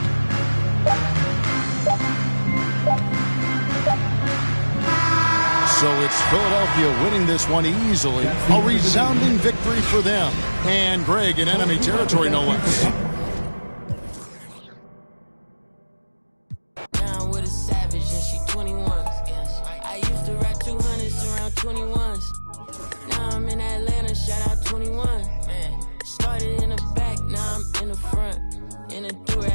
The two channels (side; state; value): both; inverted; correlation -1.00